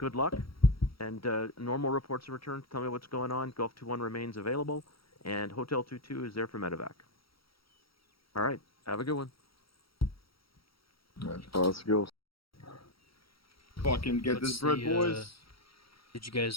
luck. And normal reports of return, tell me what's going on. Golf 2-1 remains available, and Hotel 2-2 is there for medevac. All right, have a good one. Let's go. Fucking get What's this bread, the, boys. Did you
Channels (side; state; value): right; late; 0.75 ms